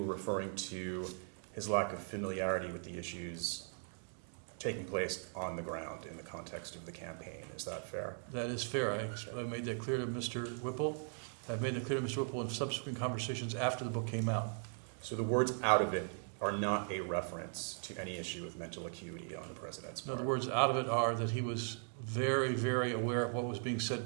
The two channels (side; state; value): left; silent; 52 dB below the other